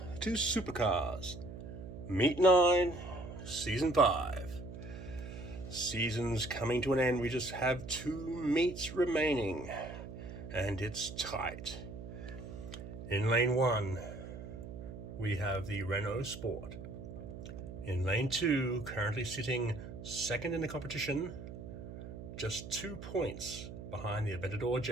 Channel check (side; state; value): right; noise; hum, 11 dB below the sound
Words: to Supercars, Meet 9, Season 5. Season's coming to an end. We just have 2 meets remaining, and it's tight. In Lane 1, we have the Renault Sport. In Lane 2, currently sitting second in the competition, just 2 points behind the Aventador